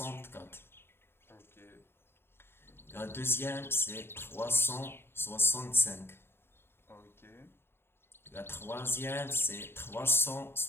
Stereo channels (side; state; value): right; late; 0.11 ms